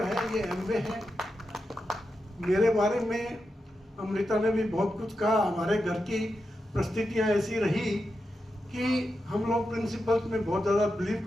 है ये एमवे है। मेरे बारे में अमृता ने भी बहुत कुछ कहा। हमारे घर की परिस्थितियाँ ऐसी रही कि हम लोग प्रिंसिपल्स में बहुत ज़्यादा बिलीव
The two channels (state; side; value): normal; both; correlation 0.88